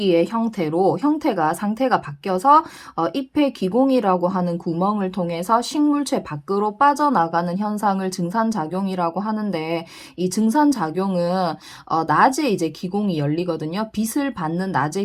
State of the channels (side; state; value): both; identical; correlation 1.00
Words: 형태가 상태가 바뀌어서 잎의 기공이라고 하는 구멍을 통해서 식물체 밖으로 빠져나가는 현상을 증산작용이라고 하는데, 이 증산작용은 낮에 이제 기공이 열리거든요. 빛을 받는 낮에